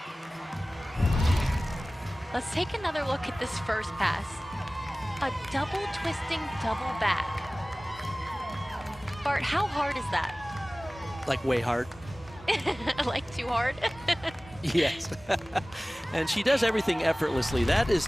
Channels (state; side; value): normal; both; correlation 0.98